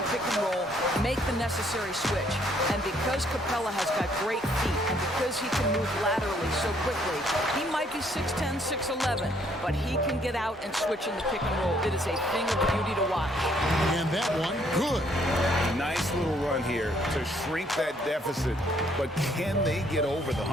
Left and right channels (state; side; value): normal; both; correlation 0.67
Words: pick and roll, make the necessary switch. And because Capella has got great feet, and because he can move laterally so quickly, he might be 6'10", 6'11", but he can get out and switch in the pick and roll. It is a thing of beauty to watch. And that one, good. Nice little run here to shrink that deficit, but can they get over the